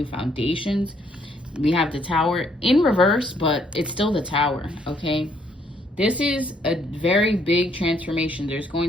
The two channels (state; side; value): normal; both; correlation 0.69